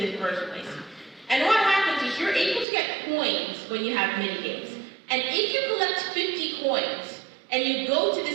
first place. And what happens is you're able to get coins when you have mini games. And if you collect 50 coins and you go to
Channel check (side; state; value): left; drops out; at 2.7 s